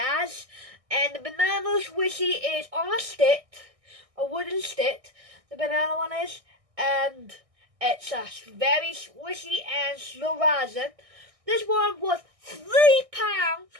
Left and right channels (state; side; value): late; left; 1.6 ms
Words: and the banana swooshy is on a stick, a wooden stick. The banana one is, and it's a very swishy and slow rising. This one was £3.